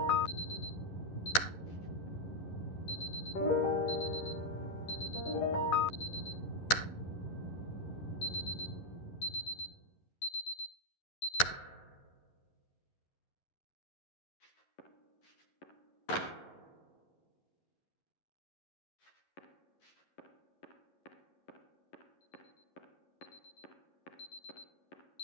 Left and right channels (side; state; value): right; late; 11 ms